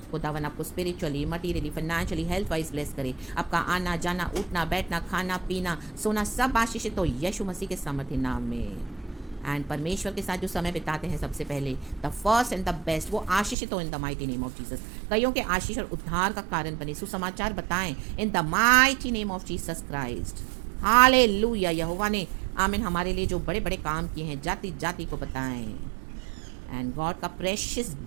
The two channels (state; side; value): drops out; left; at 13.6 s